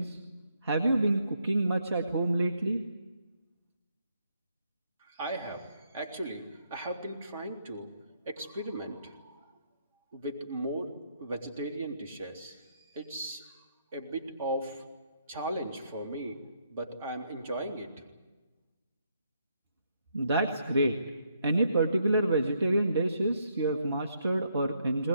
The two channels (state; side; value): inverted; both; correlation -0.74